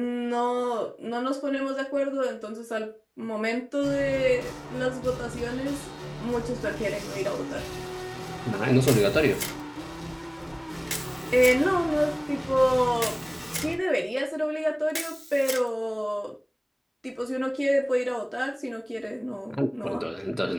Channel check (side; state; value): both; identical; correlation 1.00